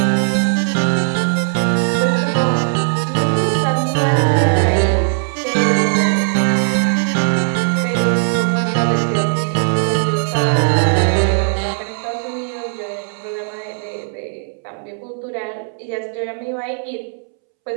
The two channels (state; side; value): silent; left; 68 dB below the other